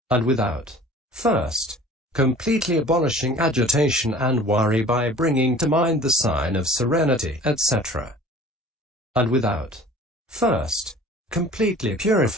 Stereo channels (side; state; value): both; normal; correlation 0.46